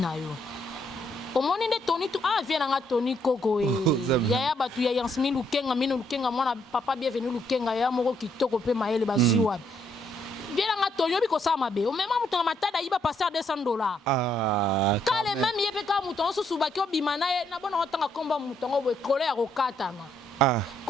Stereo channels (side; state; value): both; normal; correlation 0.73